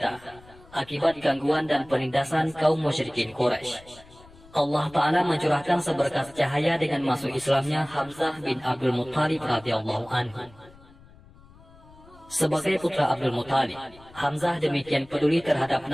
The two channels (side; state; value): left; noise; rumble, 24 dB below the sound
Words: akibat gangguan dan penindasan kaum musyrikin Quraisy, Allah Ta'ala mencurahkan seberkas cahaya dengan masuk Islamnya Hamzah bin Abdul Muttalib radhiyallahu anhu. Sebagai putra Abdul Muttalib, Hamzah demikian peduli terhadap